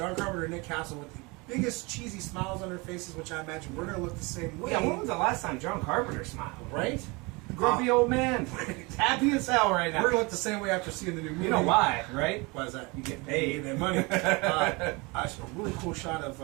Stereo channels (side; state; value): left; quieter; 26.7 dB